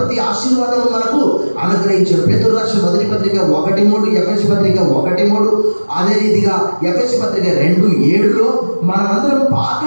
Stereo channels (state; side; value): inverted; both; correlation -1.00